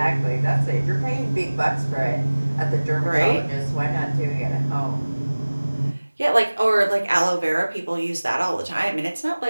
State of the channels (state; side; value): inverted; both; correlation -1.00